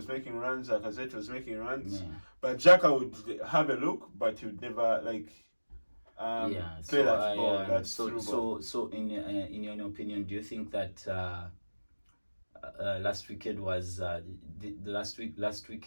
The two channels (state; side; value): inverted; both; correlation -1.00